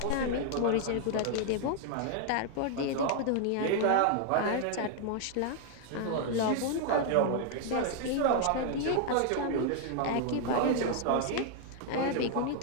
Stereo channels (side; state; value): both; different; correlation 0.00